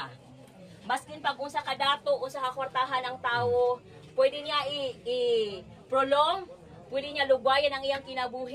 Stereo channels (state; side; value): identical; both; correlation 1.00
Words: Maskin pag unsa ka dato, unsa ka kwartahan ang tawo, pwede niya i-prolong, pwede niya lugwayan ang iyang